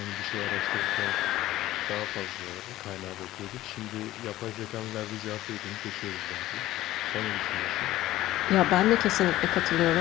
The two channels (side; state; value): right; quieter; 15.3 dB